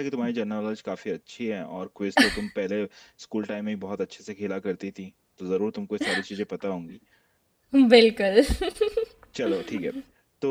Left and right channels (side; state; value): both; identical; correlation 1.00